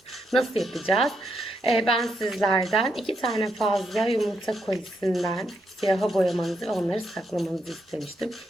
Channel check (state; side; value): normal; both; correlation 0.79